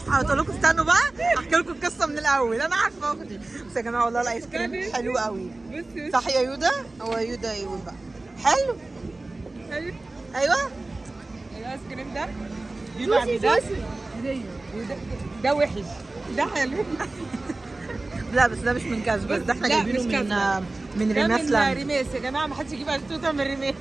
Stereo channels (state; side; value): quieter; left; 3.1 dB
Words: لكم استنوا بقى احكي لكم القصه من الاول. انا عارفه اختي بس يا جماعه والله الايس كريم حلو قوي. بصي صح يا يودا؟ هو يودا يقول بقى حلو. ايوه ايوه الايس كريم ده بيبقى ده وحش ده حلو. لا بس ده مش من كاس بس ده احنا لا، جايبينه مش من كاس. من ده ريماس من لاند. ريماس يا جماعه، ما حدش يجيب اشطوطه من ريماس.